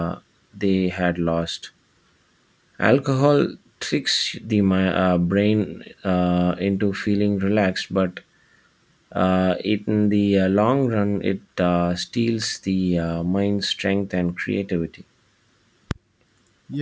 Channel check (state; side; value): identical; both; correlation 1.00